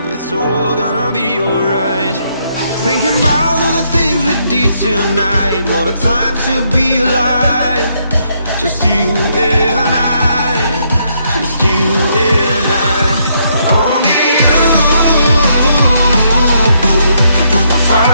it's all gonna be alright. Thinking about all the things we did tonight. What a time to be alive. Just you and I. Just you and I. Only you can put the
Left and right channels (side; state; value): both; inverted; correlation -0.74